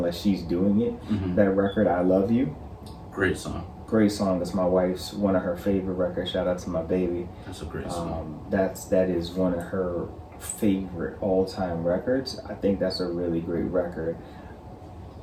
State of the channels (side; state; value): both; identical; correlation 1.00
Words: she's doing it. That record, I Love You. Great song. Great song. It's my wife's one of her favorite records. Shout out to my baby. That's a great song. That is one of her favorite all-time records. I think that's a really great record.